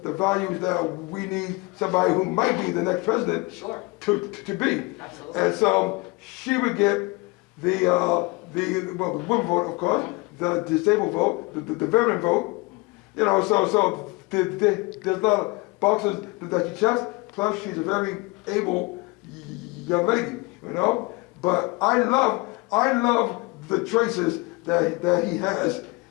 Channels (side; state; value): right; quieter; 25.6 dB